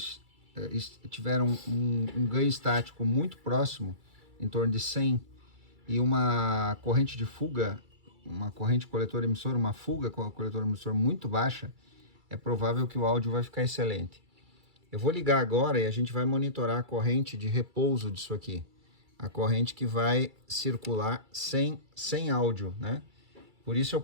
tiveram um ganho estático muito próximo, em torno de 100, e uma corrente de fuga, uma corrente coletor-emissor, uma fuga com o coletor-emissor muito baixa, é provável que o áudio vai ficar excelente. Eu vou ligar agora e a gente vai monitorar a corrente de repouso disso aqui. A corrente que vai circular sem áudio, né? Por isso eu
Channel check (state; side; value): late; left; 2.3 ms